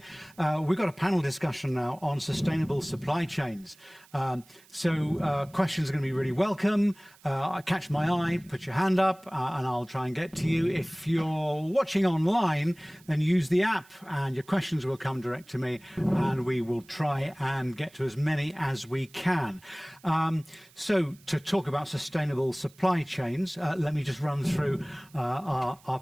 We've got a panel discussion now on sustainable supply chains. So questions are going to be really welcome. Catch my eye, put your hand up, and I'll try and get to you. If you're watching online, then use the app and your questions will come direct to me, and we will try and get to as many as we can. So to talk about sustainable supply chains, let me just run through our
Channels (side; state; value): right; noise; hiss, 27 dB below the sound